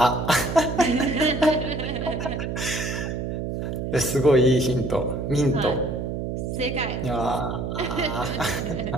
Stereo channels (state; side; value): noise; right; hum, 3 dB below the sound